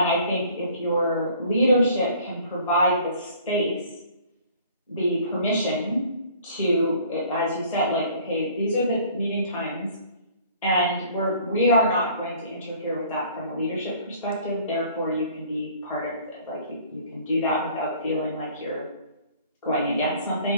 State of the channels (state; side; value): inverted; both; correlation -0.53